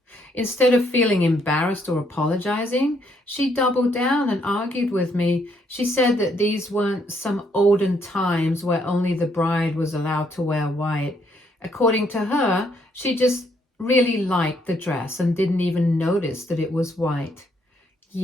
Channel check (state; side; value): normal; both; correlation 0.71